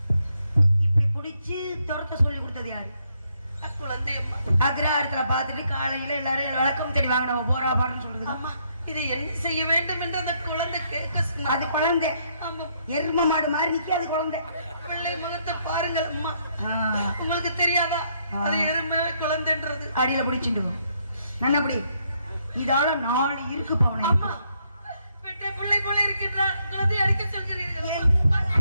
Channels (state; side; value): inverted; both; correlation -0.73